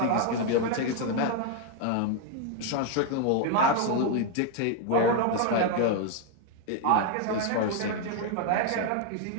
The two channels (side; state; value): both; different; correlation 0.01